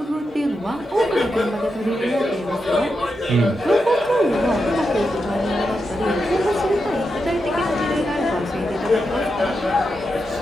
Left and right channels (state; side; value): normal; both; correlation 0.87